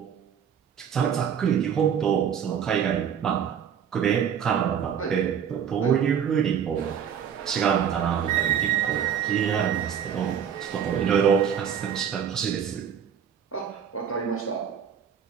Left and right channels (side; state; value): left; quieter; 8.2 dB